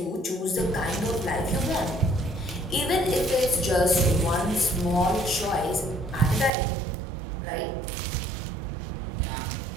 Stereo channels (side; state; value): left; drops out; at 6.5 s